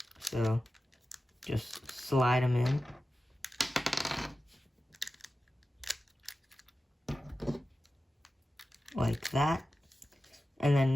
So just slide them in. Like that. And then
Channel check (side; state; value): both; normal; correlation 0.93